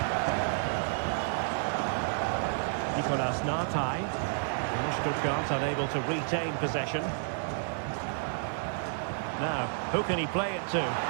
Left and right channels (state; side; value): silent; left; digital silence